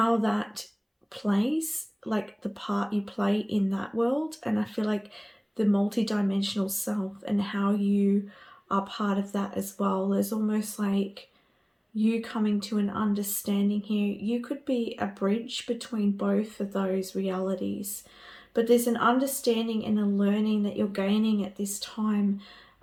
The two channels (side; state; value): both; identical; correlation 1.00